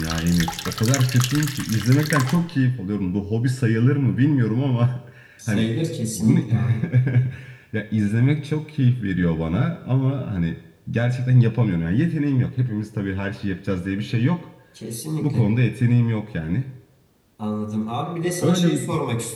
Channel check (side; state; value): both; identical; correlation 1.00